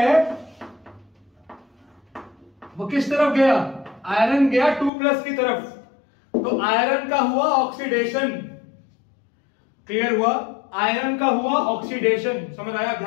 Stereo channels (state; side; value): drops out; right; at 4.9 s